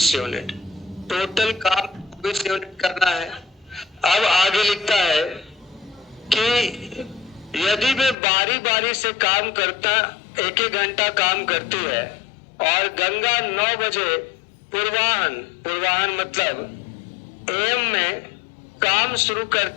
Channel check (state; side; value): drops out; right; at 8.2 s